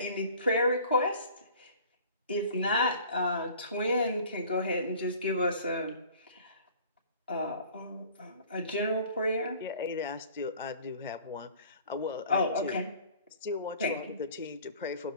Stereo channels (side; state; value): both; inverted; correlation -0.48